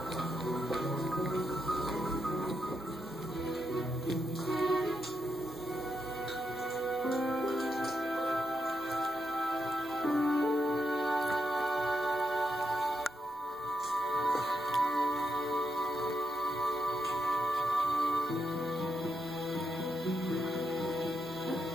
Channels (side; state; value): left; noise; rumble, 28 dB below the sound